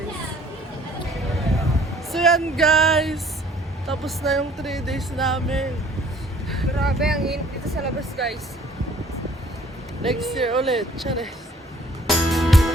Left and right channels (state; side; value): normal; both; correlation 0.57